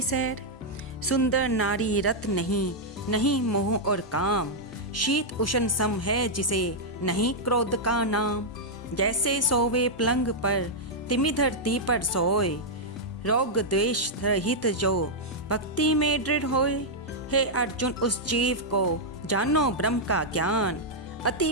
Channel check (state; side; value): normal; both; correlation -0.05